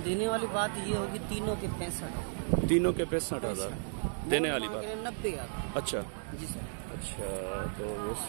देने वाली बात ये होगी तीनों के 65। तीनों के 65,000 देने वाली बात? 90,000। अच्छा अच्छा, तो बस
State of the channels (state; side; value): silent; left; digital silence